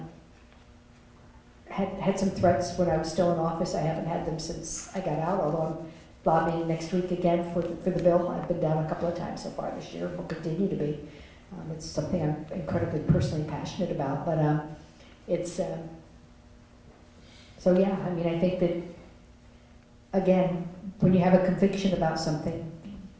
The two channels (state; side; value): identical; both; correlation 1.00